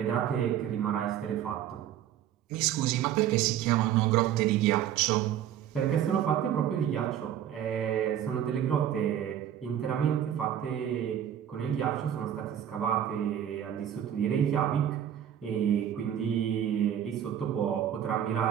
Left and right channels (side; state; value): left; quieter; 10.3 dB